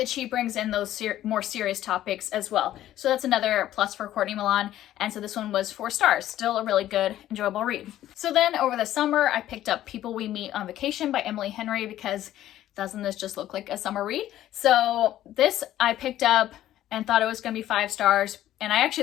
she brings in those more serious topics as well. So that's another plus for Courtney Milan. And so this one was 4 stars. Still a really good, enjoyable read. So then over the summer, I picked up People We Meet on Vacation by Emily Henry, because doesn't this just look like a summer read? So this I picked up and thought it was going to be 5 stars. And this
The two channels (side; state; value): right; quieter; 13.1 dB